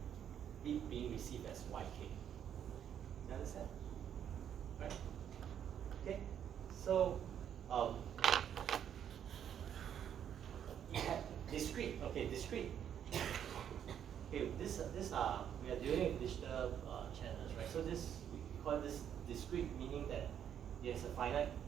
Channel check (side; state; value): left; quieter; 9.2 dB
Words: it being received as yk. You understand? Right? Okay. So you have discrete. Okay, discrete. Okay, this are we are dealing with digital channels, right? So this we call this discrete, meaning that it has a finite